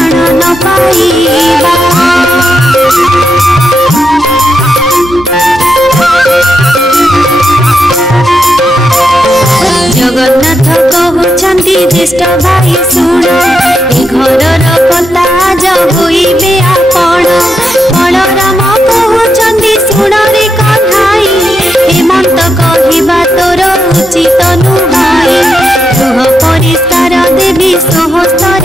ନ ପାଇବା। ଜଗନ୍ନାଥ କହୁଛନ୍ତି ଜ୍ୟେଷ୍ଠ ଭାଇ ଶୁଣ, ଏ ଘରର କଥା ଆଜ ହୋଇବେ ଆପଣ। ବଳରାମ କହୁଛନ୍ତି ଶୁଣରେ କହ୍ନାଇ, ହେମନ୍ତ କହିବା ତୋର ଉଚିତ ନୁହେଁ। ଗୃହ ପରିଷ୍କାର ଦେବୀ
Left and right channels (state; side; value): normal; both; correlation 0.83